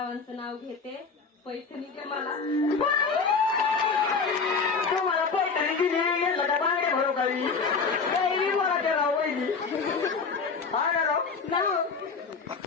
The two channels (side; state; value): right; quieter; 5.0 dB